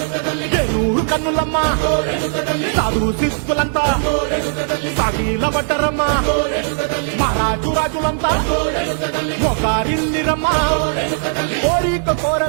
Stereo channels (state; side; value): silent; left; 67 dB below the other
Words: ఏనూరు కన్నులమ్మా సాధు శిస్తులంతా సాగిల పడ్డరమ్మా మహారాజు రాజులంతా ఒకరిల్లిరమ్మా కోరిక